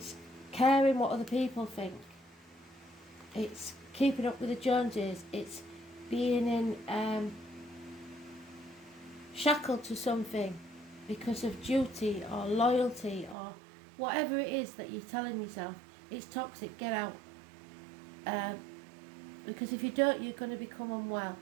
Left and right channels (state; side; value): drops out; left; at 13.4 s